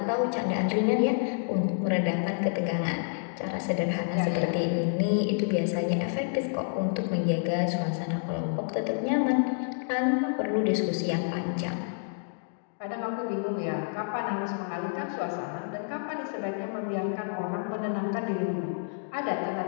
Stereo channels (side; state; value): right; silent; digital silence